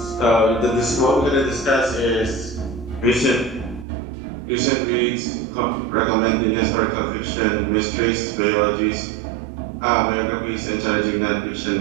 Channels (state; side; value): drops out; left; at 3.9 s